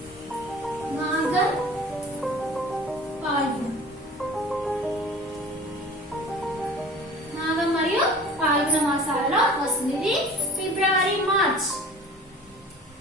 మాఘం మరియు పాల్గొన మాసాలలో వస్తుంది. ఇది ఫిబ్రవరి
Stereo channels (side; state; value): both; normal; correlation 0.43